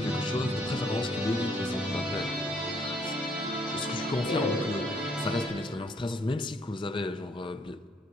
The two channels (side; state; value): both; normal; correlation 0.67